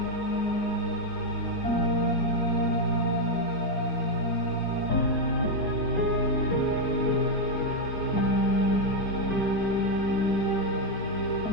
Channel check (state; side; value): late; right; 4.6 ms